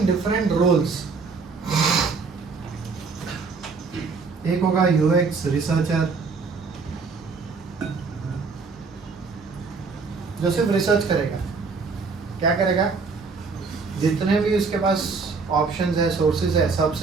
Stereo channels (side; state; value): left; quieter; 4.7 dB